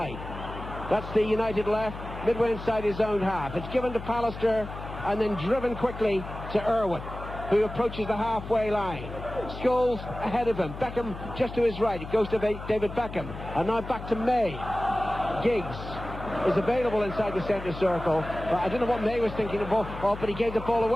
That's the United left, midway inside his own half. It's given to Pallister and then driven quickly to Irwin, who approaches the halfway line. Scholes ahead of him. Beckham just to his right. It goes to David Beckham. And now back to May. Giggs is available inside the centre circle. But I don't know what May was thinking of, but he gave the ball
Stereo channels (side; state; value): left; noise; hum, 10 dB below the sound